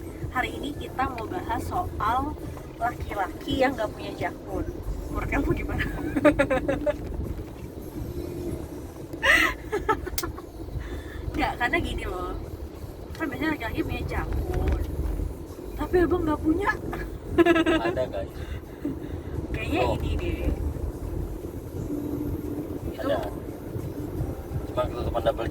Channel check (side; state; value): both; identical; correlation 1.00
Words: hari ini kita mau bahas soal laki-laki yang gak punya jakun. Menurut kamu gimana? Nggak, karena gini loh, kan biasanya laki-laki punya jakun, tapi abang gak punya. Ada guys. Kayaknya ini deh. Itu Ada. Cuma ketutupan double